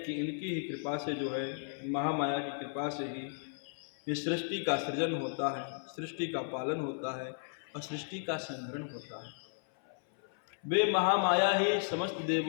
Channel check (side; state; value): right; silent; 55 dB below the other